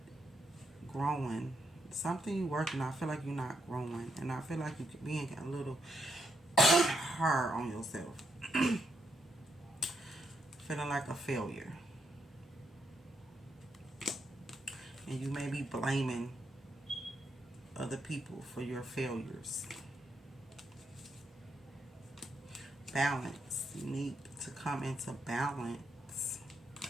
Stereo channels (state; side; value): normal; both; correlation 0.79